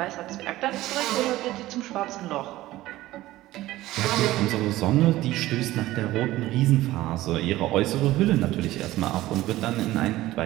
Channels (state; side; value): quieter; left; 16.4 dB